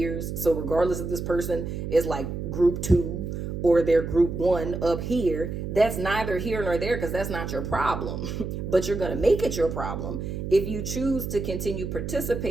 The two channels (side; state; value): right; noise; hum, 5 dB below the sound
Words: so regardless if this person is like group 2 or they're group 1 up here, that's neither here nor there, because that's not your problem. But you're going to make it your problem if you choose to continue